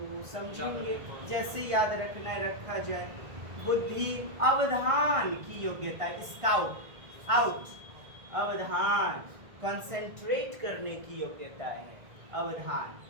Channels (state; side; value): late; left; 1.5 ms